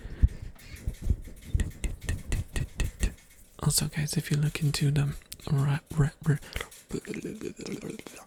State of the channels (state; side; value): identical; both; correlation 1.00